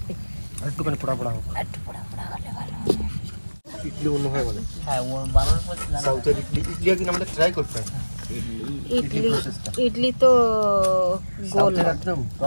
একটুখানি পোড়া পোড়া হোক। একটু পোড়া পোড়া হলে ভালো। ইডলি অন্য হয় বলে। হ্যাঁ ও বানানোর পর সাউথের ইডলি একদিন আমাদের ট্রাই করতে হবে। ইডলি তো গোল একদম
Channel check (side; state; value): both; inverted; correlation -1.00